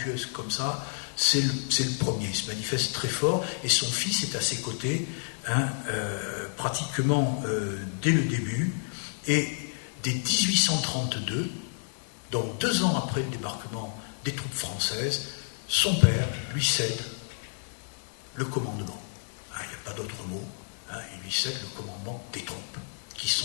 comme ça, c'est le premier. Il se manifeste très fort et son fils est à ses côtés pratiquement dès le début. Et dès 1832, donc 2 ans après le débarquement des troupes françaises, son père lui cède le commandement. Il n'y a pas d'autre mot. Il lui cède le commandement des troupes qui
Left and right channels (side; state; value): right; silent; digital silence